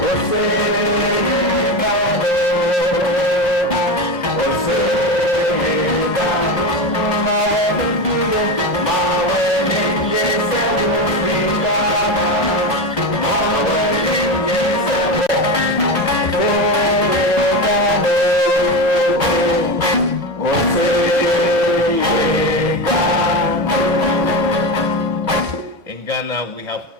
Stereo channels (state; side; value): normal; both; correlation 0.19